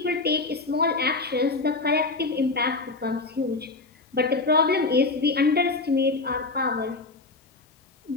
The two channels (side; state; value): right; quieter; 3.6 dB